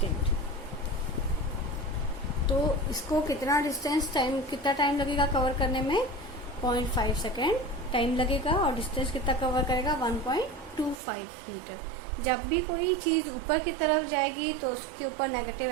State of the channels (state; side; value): drops out; left; at 11.0 s